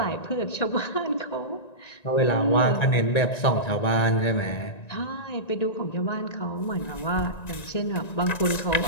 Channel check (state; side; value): late; right; 1.9 ms